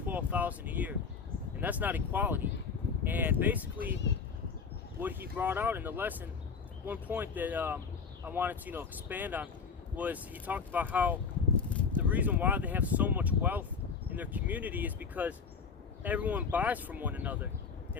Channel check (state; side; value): quieter; right; 5.6 dB